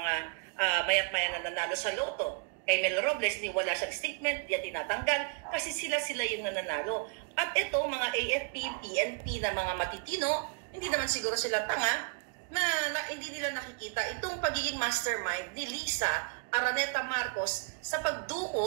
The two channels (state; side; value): quieter; left; 35.0 dB